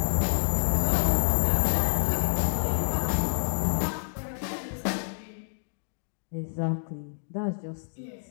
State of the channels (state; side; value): silent; right; digital silence